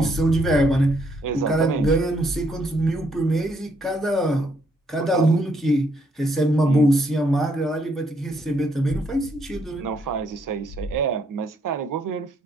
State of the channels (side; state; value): both; normal; correlation 0.72